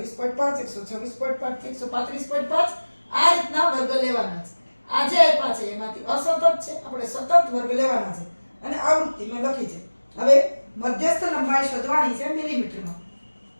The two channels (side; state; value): both; inverted; correlation -1.00